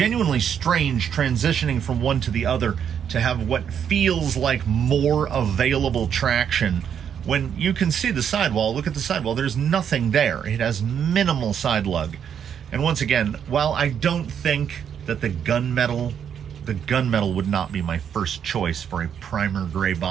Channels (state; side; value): quieter; left; 8.3 dB